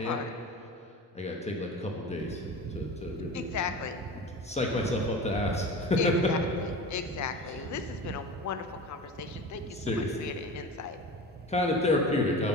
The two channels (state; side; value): normal; both; correlation 0.33